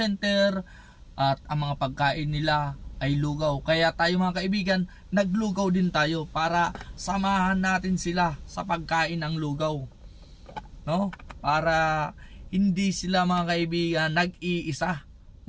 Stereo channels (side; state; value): both; identical; correlation 1.00